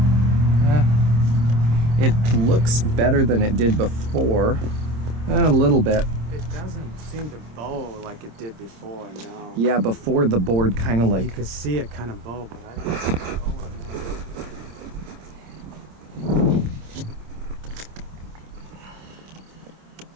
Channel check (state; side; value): late; left; 26 ms